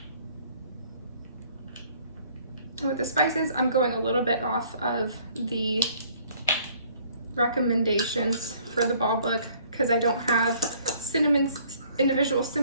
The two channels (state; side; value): inverted; both; correlation -0.59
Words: With the spices, I'm going a little bit off of the recommendations for the ball book because I don't have individual